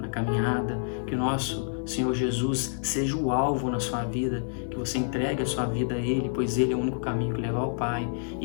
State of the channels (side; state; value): right; silent; 58 dB below the other